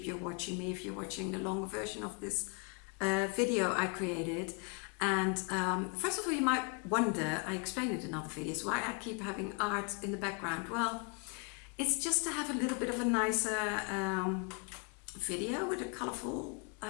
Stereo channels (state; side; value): quieter; right; 34.9 dB